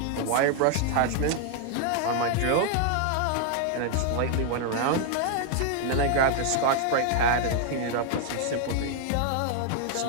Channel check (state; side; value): different; both; correlation 0.00